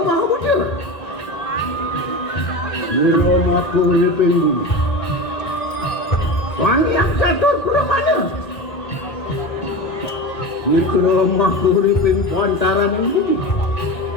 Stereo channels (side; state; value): right; late; 1.5 ms